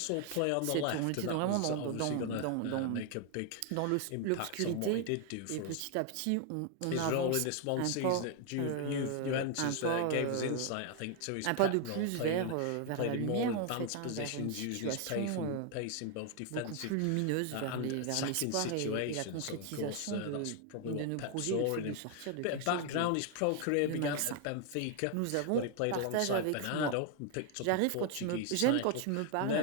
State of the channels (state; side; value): different; both; correlation 0.00